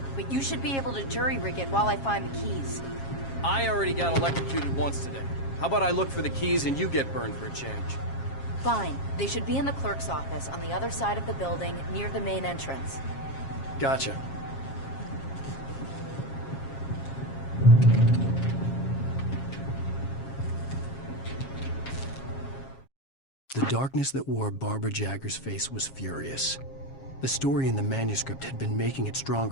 but you should be able to jury-rig it while I find the keys. I already got electrocuted once today. How about I look for the keys and you get burned for a change? Fine. They should be in the clerk's office on the other side of the building, near the main entrance. Gotcha. The darkness that wore Barbara Jagger's face was furious. The story in the manuscript had been making it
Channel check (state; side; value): late; right; 7.4 ms